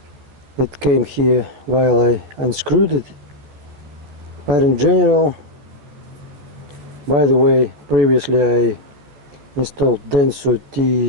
that came here while I unscrewed it. But in general, by the way, previously I installed Denso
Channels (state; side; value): late; left; 14 ms